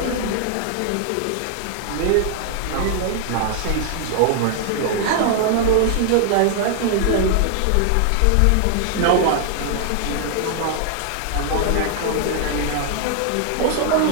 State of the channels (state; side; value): different; both; correlation 0.00